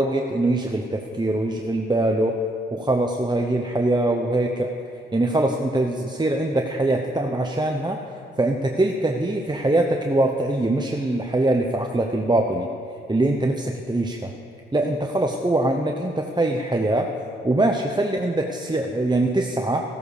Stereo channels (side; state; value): both; normal; correlation 0.74